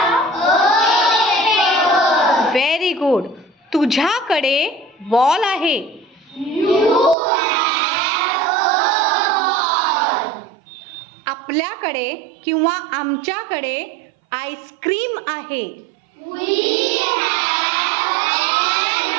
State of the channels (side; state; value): left; drops out; at 7.2 s